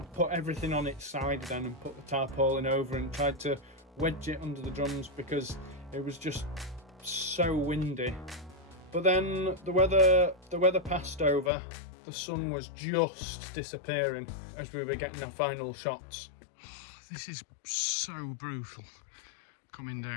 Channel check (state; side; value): drops out; right; at 11.5 s